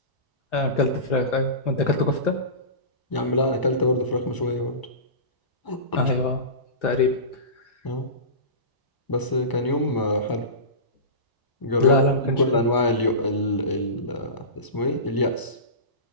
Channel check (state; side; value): late; right; 1.0 ms